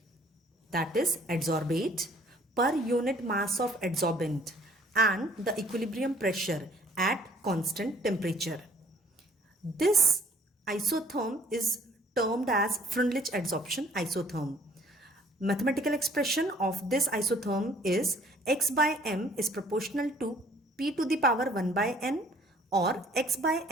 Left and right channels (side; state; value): both; normal; correlation 0.57